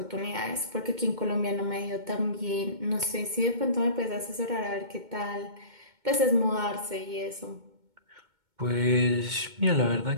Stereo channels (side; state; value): left; late; 2.2 ms